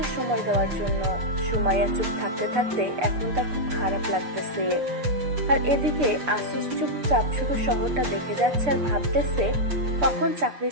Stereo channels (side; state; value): left; late; 6.8 ms